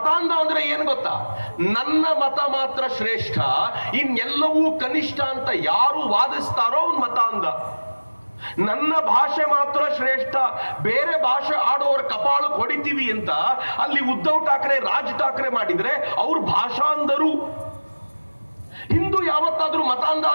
ಅಂದ್ರೆ ಏನ್ ಗೊತ್ತಾ? ನನ್ನ ಮತ ಮಾತ್ರ ಶ್ರೇಷ್ಠ, ಇನ್ನೆಲ್ಲವೂ ಕನಿಷ್ಠ ಅಂತ ಯಾರು ವಾದಿಸ್ತಾರೋ ಅವ್ನು ಮತಾಂಧ. ನನ್ನ ಭಾಷೆ ಮಾತ್ರ ಶ್ರೇಷ್ಠ, ಬೇರೆ ಭಾಷೆ ಆಡೋರ ಕಪಾಳಕ್ಕೆ ಹೊಡಿತೀವಿ ಅಂತ ಅಲ್ಲಿ ಉದ್ಧವ್ ಠಾಕ್ರೆ, ರಾಜ್ ಠಾಕ್ರೆ ಮಾಡಿದ್ರೆ ಅವ್ರು ಭಾಷಾಂಧರು. ಹಿಂದೂ ಯಾವತ್ತಾದ್ರೂ ಮತಾಂಧ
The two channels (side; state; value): both; inverted; correlation -1.00